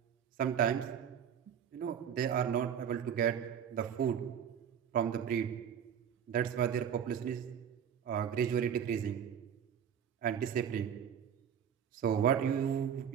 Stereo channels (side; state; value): left; quieter; 8.4 dB